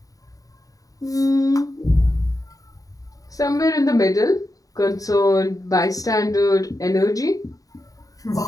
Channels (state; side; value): late; right; 0.17 ms